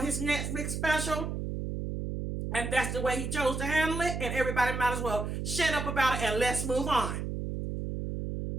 his Netflix special. And that's the way he chose to handle it, and everybody might as well shut up about it and let's move on.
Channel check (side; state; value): right; noise; hum, 4 dB below the sound